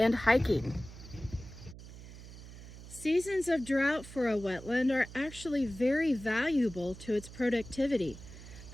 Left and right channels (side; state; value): right; noise; hum, 15 dB below the sound